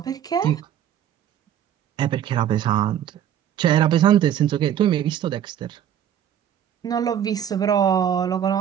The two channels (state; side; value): quieter; left; 10.0 dB